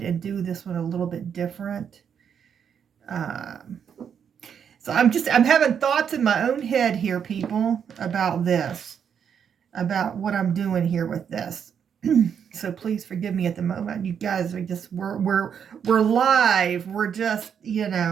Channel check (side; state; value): left; quieter; 7.7 dB